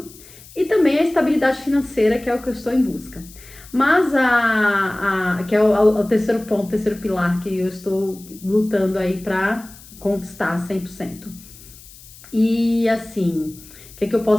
e também a estabilidade financeira, que é o que eu estou em busca. Mas que é o terceiro ponto, o terceiro pilar que eu estou lutando aí para conquistar 100%. E assim, o que eu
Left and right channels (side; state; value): left; noise; hiss, 21 dB below the sound